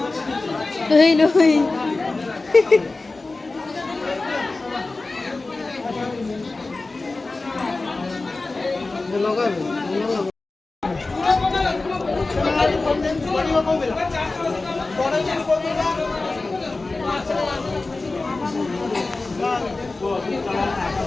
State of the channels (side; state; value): right; quieter; 3.4 dB